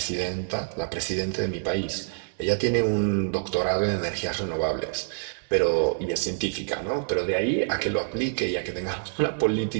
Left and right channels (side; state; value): left; silent; 60 dB below the other